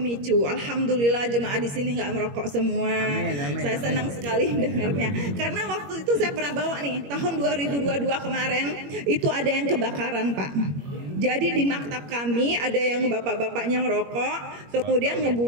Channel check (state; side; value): late; left; 21 ms